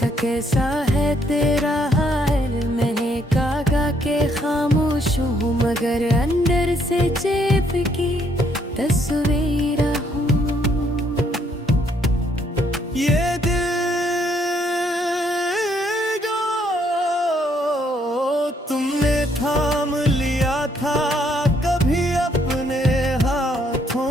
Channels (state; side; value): normal; both; correlation 0.70